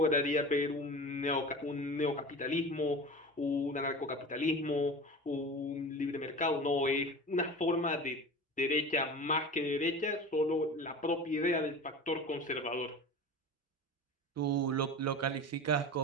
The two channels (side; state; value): both; normal; correlation 0.34